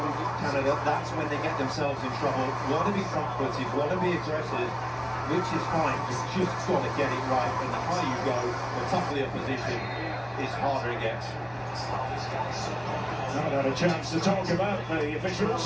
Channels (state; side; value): identical; both; correlation 1.00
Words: Canada, that's when they get themselves in trouble. Want to be front-footed, want to be aggressive, which is fine. You've just got to get it right. And the higher you go, the tougher the opposition is, harder it gets. Not had a chance to talk about the